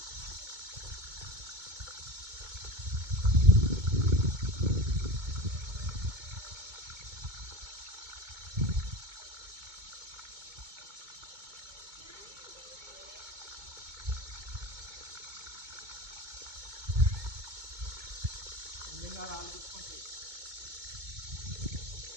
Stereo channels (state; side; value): late; left; 2.2 ms